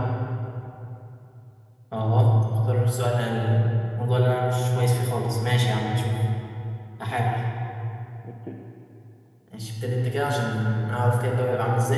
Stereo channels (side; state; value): both; identical; correlation 1.00